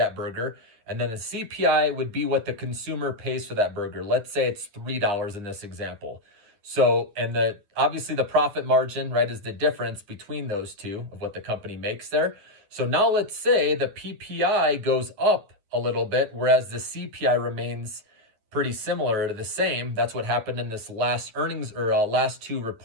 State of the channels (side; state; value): left; late; 9.8 ms